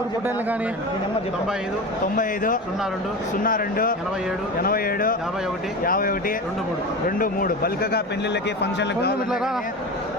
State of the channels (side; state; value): both; normal; correlation 0.27